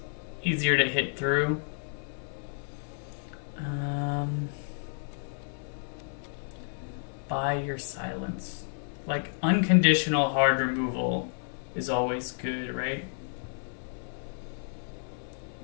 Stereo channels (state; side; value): silent; right; 57 dB below the other